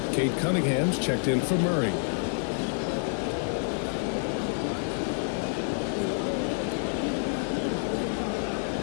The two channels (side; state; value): right; silent; 59 dB below the other